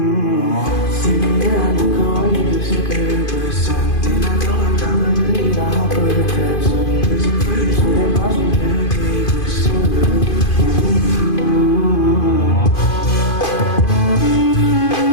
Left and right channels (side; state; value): right; late; 2.5 ms